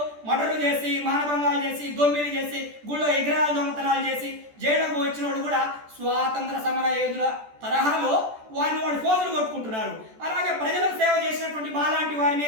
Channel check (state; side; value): late; left; 14 ms